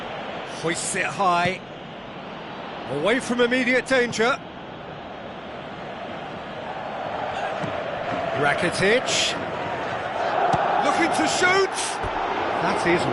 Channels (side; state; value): both; identical; correlation 1.00